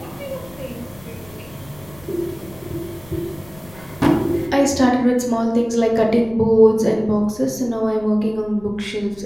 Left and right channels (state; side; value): noise; left; rumble, 23 dB below the sound